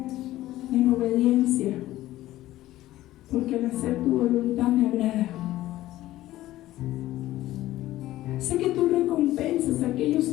en obediencia, porque al hacer tu voluntad me agrada. Sé que tú recompensas a aquellos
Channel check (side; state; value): right; quieter; 15.3 dB